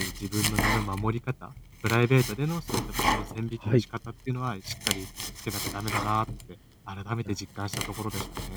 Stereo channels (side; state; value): both; identical; correlation 1.00